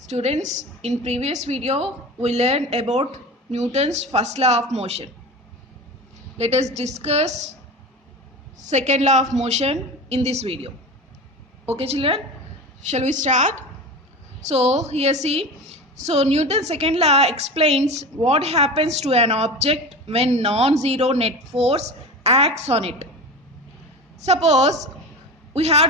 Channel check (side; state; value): both; normal; correlation 0.29